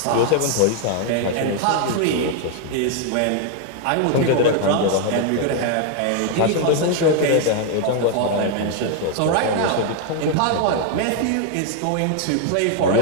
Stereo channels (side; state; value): both; different; correlation 0.00